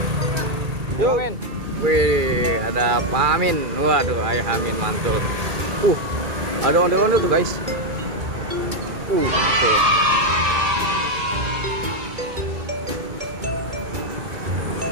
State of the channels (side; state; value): left; late; 2.2 ms